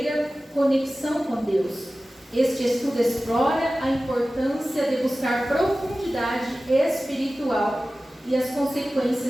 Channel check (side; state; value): both; normal; correlation 0.96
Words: conexão com Deus. Este estudo explora a importância de buscar profundidade espiritual e as